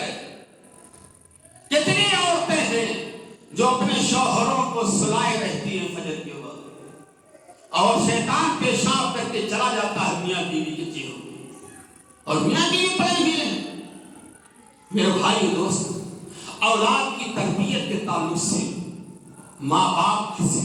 کتنی عورتیں ہیں جو اپنے شوہروں کو سلائے رہتی ہیں فجر کے وقت، اور شیطان پیشاب کر کے چلا جاتا ہے میاں بیوی کے چہروں میں، اور میاں بیوی پڑے ہوئے ہیں۔ میرے بھائی دوست، اولاد کی تربیت کے تعلق سے ماں باپ کی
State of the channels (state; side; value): identical; both; correlation 1.00